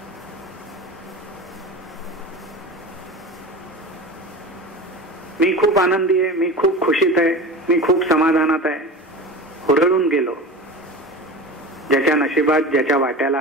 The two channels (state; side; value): normal; both; correlation 0.31